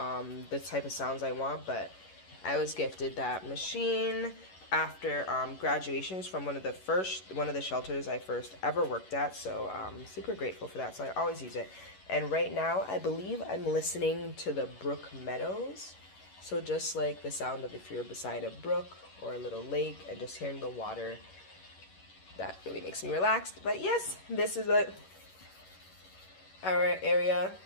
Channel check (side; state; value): right; late; 11 ms